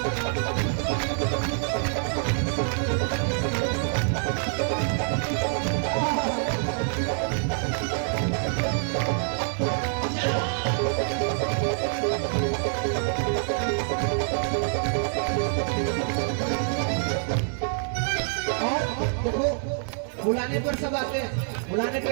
और देखो बुलाने पर सब आते हैं, बुलाने पे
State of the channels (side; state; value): left; silent; 61 dB below the other